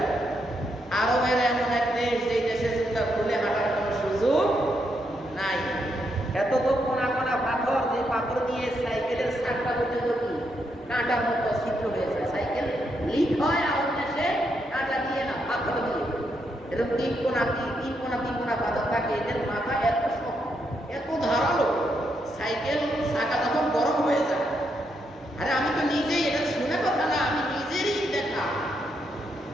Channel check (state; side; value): normal; both; correlation 0.79